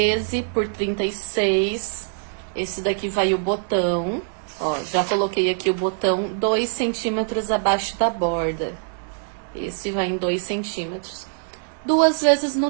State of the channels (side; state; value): left; silent; digital silence